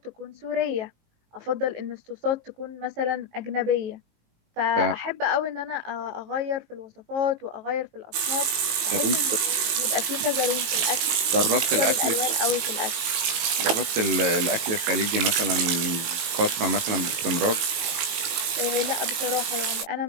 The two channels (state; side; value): late; left; 18 ms